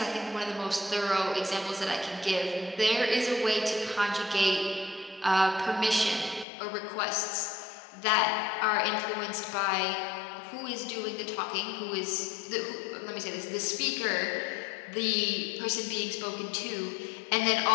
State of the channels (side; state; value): right; drops out; at 6.5 s